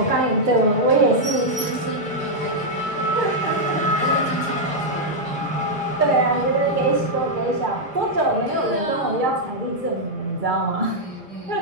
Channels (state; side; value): normal; both; correlation -0.03